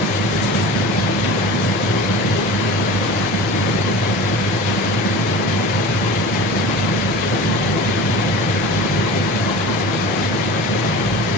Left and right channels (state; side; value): normal; both; correlation 0.35